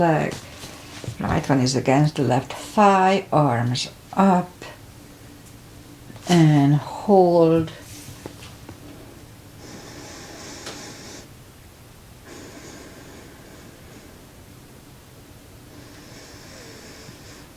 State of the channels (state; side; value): identical; both; correlation 1.00